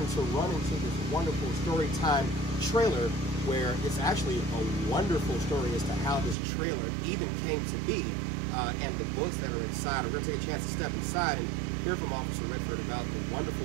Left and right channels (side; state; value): left; drops out; at 6.4 s